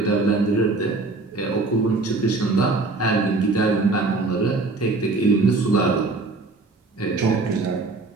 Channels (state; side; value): quieter; left; 3.5 dB